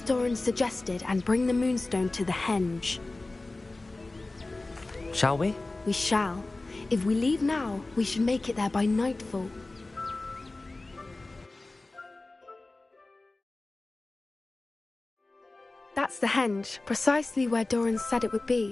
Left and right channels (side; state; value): right; quieter; 3.1 dB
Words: suggested and bring the Moonstone to the henge. Shall we? We shall. If we leave now, we should make it there by nightfall. That's the henge, precisely where Doran said it would